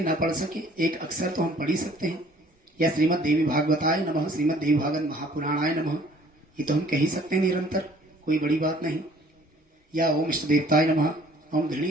ना पढ़ सके, एक अक्षर तो हम पढ़ ही सकते हैं। या श्रीमद् देवी भागवताय नमः, श्रीमद् देवी भागवत महापुराणाय नमः, ये तो हम कह ही सकते हैं निरंतर, कोई बड़ी बात नहीं। या ओम इष्ट देवताय नमः, ओम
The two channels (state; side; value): normal; both; correlation 0.56